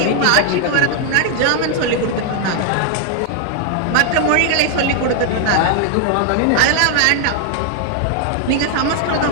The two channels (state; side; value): different; both; correlation 0.00